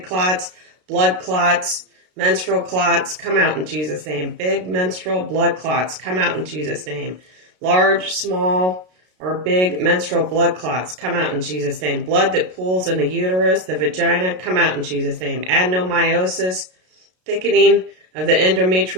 clots, blood clots, menstrual clots, come out in Jesus' name. Big menstrual blood clots, come out in Jesus' name. Large, small, or big menstrual blood clots, come out in Jesus' name. Blood that pools in the uterus, the vagina, come out in Jesus' name. Adenomyosis, thickening of the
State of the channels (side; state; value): left; late; 33 ms